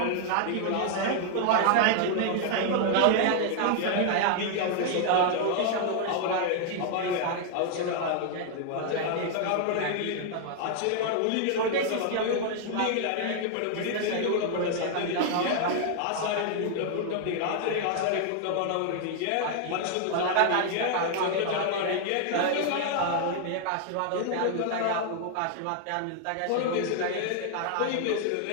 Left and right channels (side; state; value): both; different; correlation 0.00